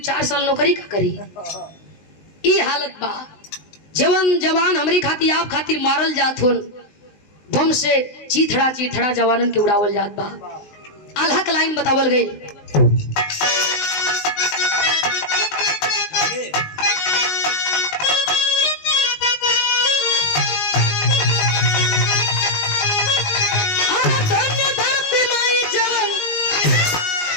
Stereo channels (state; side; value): late; right; 19 ms